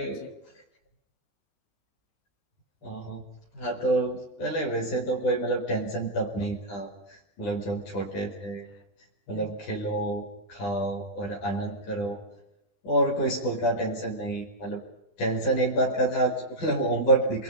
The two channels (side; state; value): right; late; 20 ms